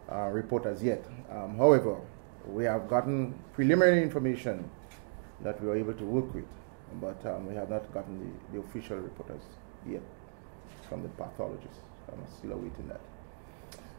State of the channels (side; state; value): left; silent; digital silence